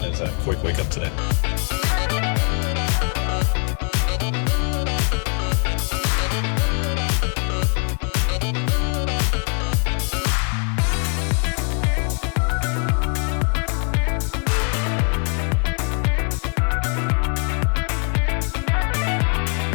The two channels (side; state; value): right; quieter; 37.8 dB